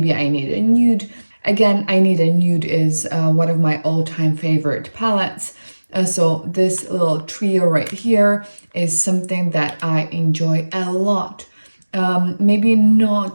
I Need a Nude. Again, I Need a Nude is one of my all-time favorite palettes. So this little trio right here is something that I enjoy a lot. Maybe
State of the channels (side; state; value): both; inverted; correlation -1.00